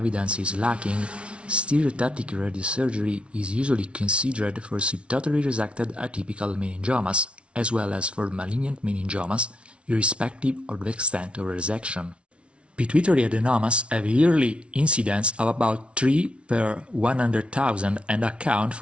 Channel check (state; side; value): late; left; 0.060 ms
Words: is lacking, stereotactic radiosurgery is usually considered for subtotally resected atypical meningiomas as well as for malignant meningiomas, irrespective of the extent of resection. Pituitary adenomas have a yearly incidence of about 3 per 100,000 and account